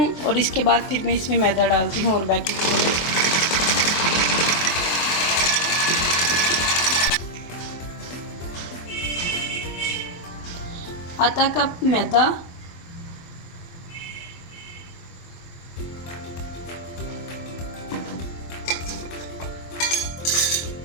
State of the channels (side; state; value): right; late; 23 ms